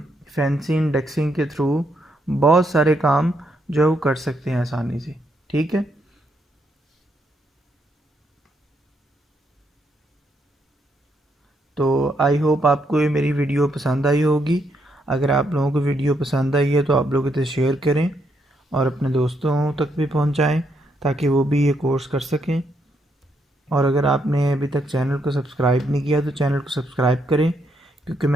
फैंसी इंडेक्सिंग के थ्रू बहुत सारे काम जो है वो कर सकते हैं आसानी से, ठीक है। तो आई होप आपको ये मेरी वीडियो पसंद आई होगी। अगर आप लोगों को वीडियो पसंद आई है तो आप लोग इसे शेयर करें और अपने दोस्तों तक भी पहुंचाएं ताकि वो भी ये कोर्स कर सकें। और अगर आपने अभी तक चैनल को सब्सक्राइब नहीं किया तो चैनल को सब्सक्राइब करें, क्योंकि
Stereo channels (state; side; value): normal; both; correlation 0.77